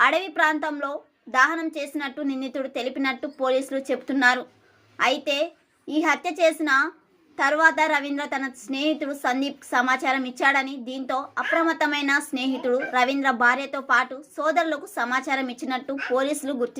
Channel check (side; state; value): both; identical; correlation 1.00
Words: ప్రాంతంలో దహనం చేసినట్టు నిందితుడు తెలిపినట్టు పోలీసులు చెబుతున్నారు. అయితే ఈ హత్య చేసిన తర్వాత రవీంద్ర తన స్నేహితుడు సందీప్ సమాచారం ఇచ్చాడని, దీంతో అప్రమత్తమైన స్నేహితుడు రవీంద్ర భార్యతో పాటు సోదరులకు సమాచారం ఇచ్చినట్టు పోలీసులు